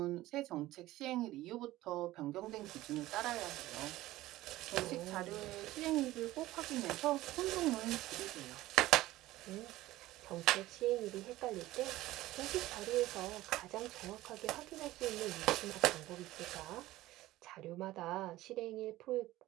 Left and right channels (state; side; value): quieter; left; 16.6 dB